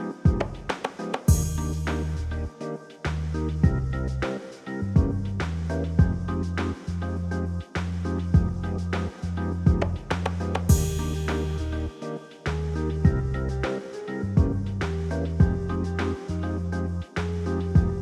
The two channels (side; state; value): both; identical; correlation 1.00